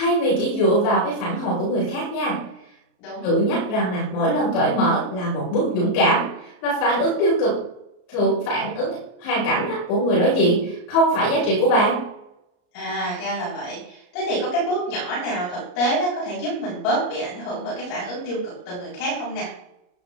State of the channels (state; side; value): late; right; 33 ms